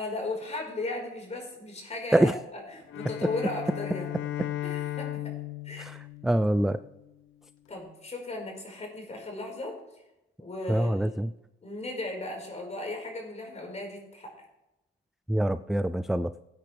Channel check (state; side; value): normal; both; correlation 0.81